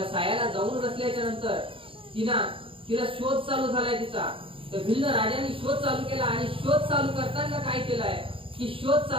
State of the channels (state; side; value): late; left; 0.26 ms